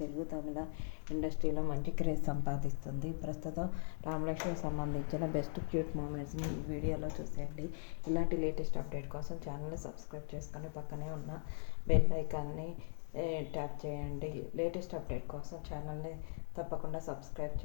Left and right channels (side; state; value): right; silent; digital silence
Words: తెలుగు తమిళ ఇండస్ట్రీలో మంచి క్రేజ్ సంపాదిస్తుంది. ప్రస్తుతం రామలక్ష్మికి సంబంధించిన బెస్ట్ క్యూట్ మూమెంట్స్ని ఈ వీడియోలో చూసేయండి. ఇలాంటి లేటెస్ట్ అప్డేట్ కోసం ఛానల్ని సబ్స్క్రైబ్ చేసుకొని పక్కనే ఉన్న బెల్ ఐకాన్ని ట్యాప్ చేయండి. లేటెస్ట్ అప్డేట్ కోసం ఛానల్ని తప్పకుండా సబ్స్క్రైబ్